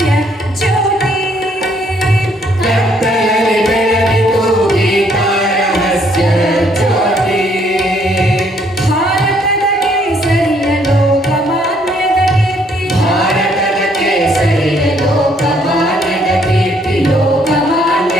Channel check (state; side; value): normal; both; correlation 0.67